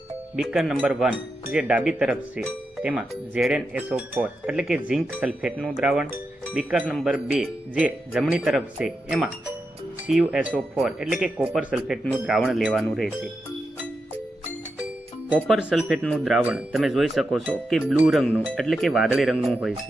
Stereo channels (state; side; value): normal; both; correlation 0.87